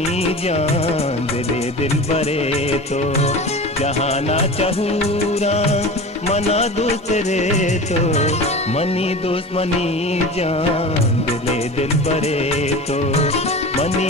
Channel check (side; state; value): both; normal; correlation 0.33